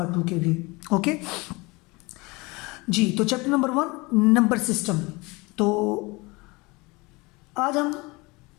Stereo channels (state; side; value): quieter; right; 24.9 dB